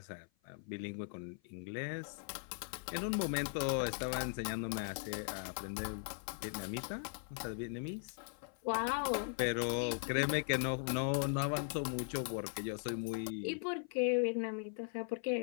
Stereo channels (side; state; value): right; silent; 52 dB below the other